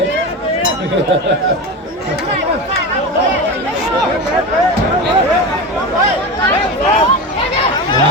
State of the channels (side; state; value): both; normal; correlation 0.24